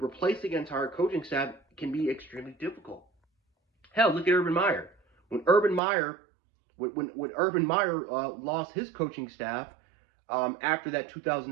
replacing an entire coaching staff can be extremely difficult. Hell, look at Urban Meyer. When Urban Meyer lost his coaching staff after that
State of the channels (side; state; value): left; drops out; at 5.8 s